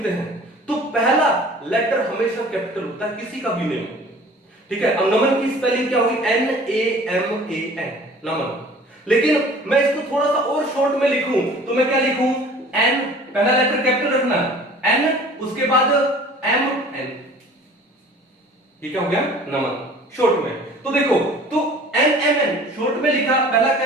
हैं तो पहला लेटर हमेशा कैपिटल होता है, किसी का भी नेम, ठीक है? अब नमन की स्पेलिंग क्या होगी? NAMAN, नमन। लेकिन मैं इसको थोड़ा सा और शॉर्ट में लिखूं तो मैं क्या लिखूं? N, पहला लेटर कैपिटल रखना, N, उसके बाद MN, ये क्या हो गया? नमन, शॉर्ट में। तो देखो, तो NMN शॉर्ट में लिखा, पहला क्या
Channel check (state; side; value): normal; both; correlation 0.47